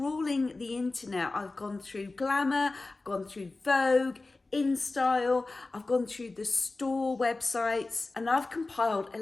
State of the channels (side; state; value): right; quieter; 3.3 dB